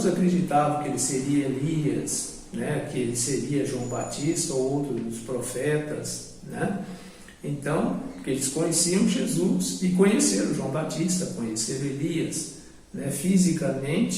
acreditavam que ele seria Elias, que ele seria João Batista ou outro dos profetas, Então, porque eles conheciam Jesus e conheceram João Batista, conheceram Elias,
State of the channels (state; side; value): identical; both; correlation 1.00